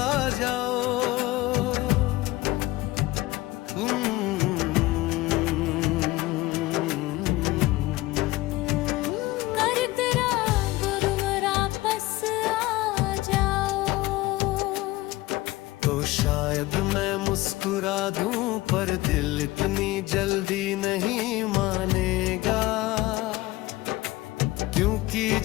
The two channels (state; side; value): quieter; right; 18.8 dB